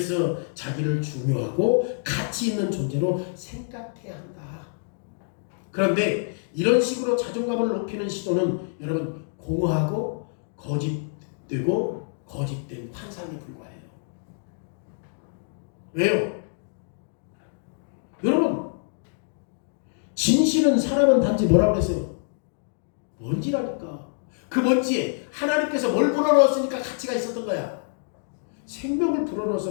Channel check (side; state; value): right; silent; digital silence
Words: 자기를 중요하고 가치 있는 존재로 생각해야 한다. 그런데 이런 식으로 자존감을 높이는 시도는 여러분 공허하고 거짓되고 거짓된 환상에 불과해요. 왜요? 여러분, 진실은 사람은 단지 뭐라고 그랬어요? 먼지라니까. 그 먼지에 하나님께서 뭘 불어넣었으니까 가치가 있었던 거야. 생명을